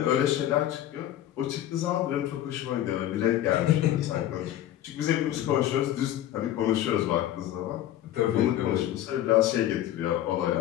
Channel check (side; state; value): right; quieter; 12.6 dB